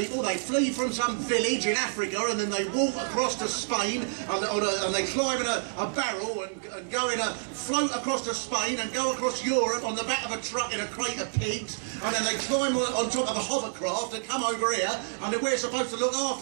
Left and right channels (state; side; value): silent; left; 59 dB below the other